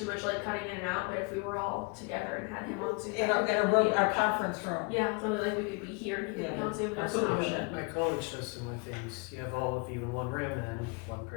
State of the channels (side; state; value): right; quieter; 31.1 dB